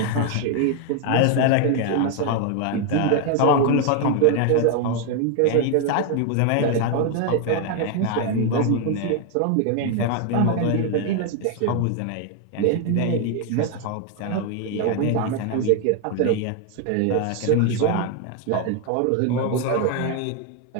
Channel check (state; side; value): different; both; correlation 0.01